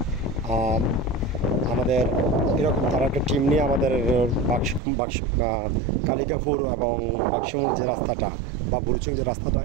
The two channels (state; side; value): drops out; left; at 4.8 s